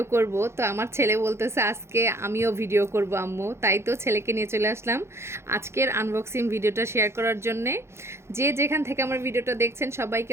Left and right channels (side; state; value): left; late; 0.13 ms